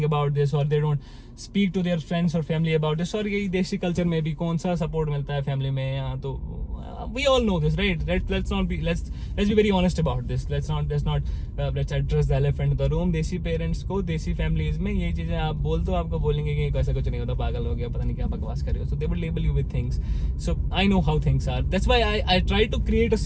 about this, or they don't speak to their friends or family about this। और यही देसी कल्चर में भी कौन सा सपोर्ट मिलता है फैमिली में यहाँ, तो we all know this, right? Let's be very honest about this. Let's address the elephant in the room. देसी पेरेंट्स को, देसी फैमिलीज में ये चीजें आप बोल तो आपको बोलेंगे कि ऐसा कुछ नहीं होता, पागल हो गया, पता नहीं क्या बकवास कर रहे हो। So they will label you with things. So I know how things are. That's why I try to create a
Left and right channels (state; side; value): identical; both; correlation 1.00